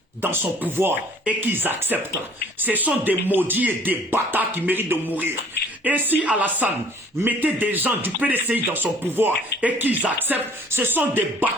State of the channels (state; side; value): normal; both; correlation 0.54